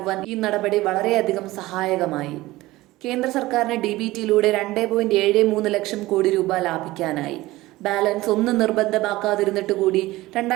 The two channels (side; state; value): left; quieter; 18.4 dB